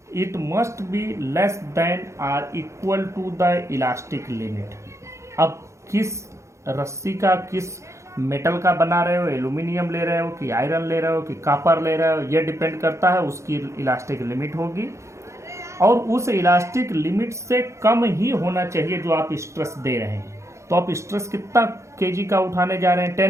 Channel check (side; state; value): left; late; 0.14 ms